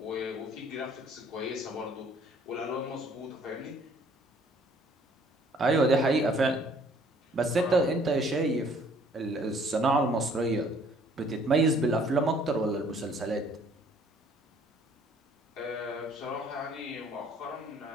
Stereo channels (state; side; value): normal; both; correlation 0.59